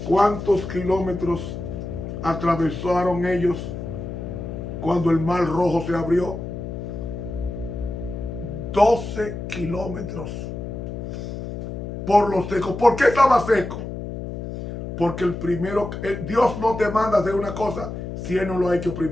cuántos kilómetros atravesaron ellos cuando el mar rojo se abrió? 12 kilómetros por lo seco. ¿Por qué estaba seco? Porque Dios no te manda a hacer una cosa si Él no lo ha hecho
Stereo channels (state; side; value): noise; left; hum, 7 dB below the sound